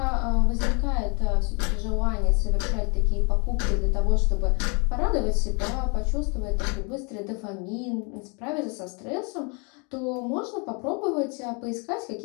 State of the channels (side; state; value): right; quieter; 33.5 dB